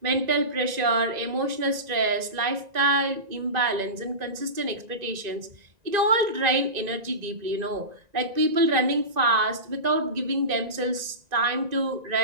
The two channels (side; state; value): left; late; 1.9 ms